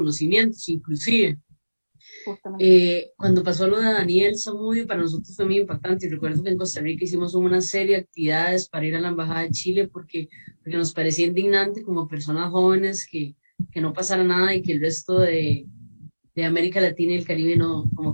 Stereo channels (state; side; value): inverted; both; correlation -1.00